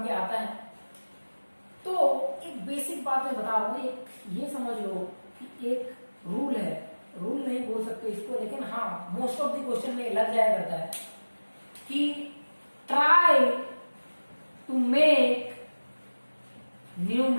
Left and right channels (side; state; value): both; inverted; correlation -1.00